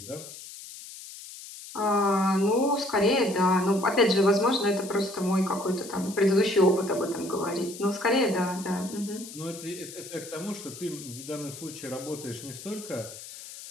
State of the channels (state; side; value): noise; left; hiss, 14 dB below the sound